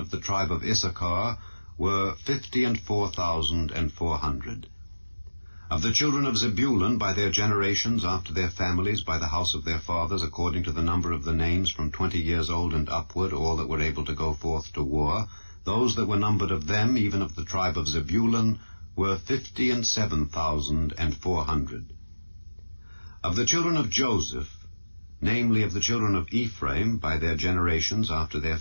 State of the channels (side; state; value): both; inverted; correlation -1.00